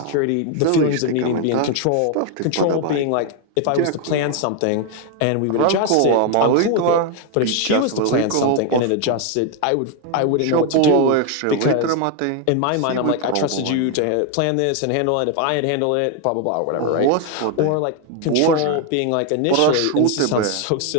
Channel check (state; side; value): different; both; correlation 0.01